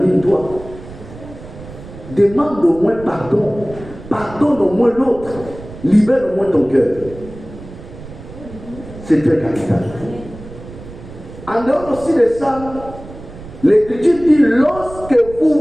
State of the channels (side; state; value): right; noise; rumble, 15 dB below the sound